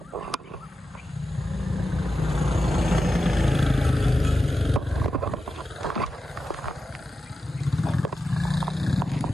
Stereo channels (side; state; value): both; normal; correlation 0.91